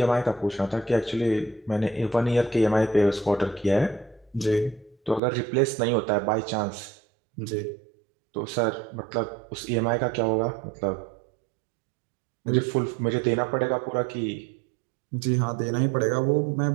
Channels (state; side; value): drops out; left; at 5.2 s